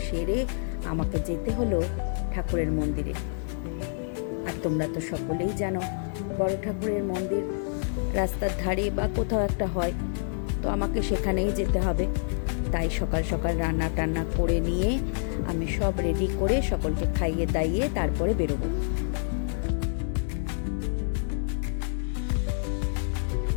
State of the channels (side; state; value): right; silent; digital silence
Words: সেরে আমাকে যেতে হলো ঠাকুরের মন্দিরে। আর তোমরা তো সকলেই জানো বড় ঠাকুরের মন্দির রাস্তার ধারে বা কোথাও একটা হয়, তো আমাকে সেখানেই যেতে হবে। তাই সকাল সকাল রান্না টান্না করে নিয়ে আমি সব রেডি করে সকলকে খাইয়ে দাইয়ে তারপরে বেরোবো।